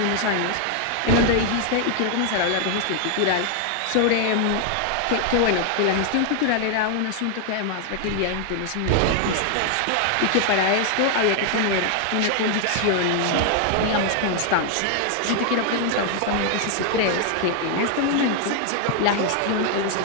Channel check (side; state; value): both; different; correlation 0.00